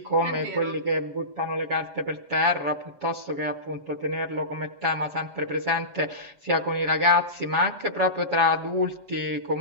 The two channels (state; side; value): late; left; 7.1 ms